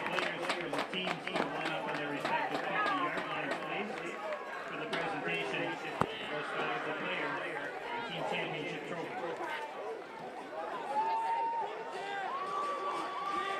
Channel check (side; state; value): both; identical; correlation 1.00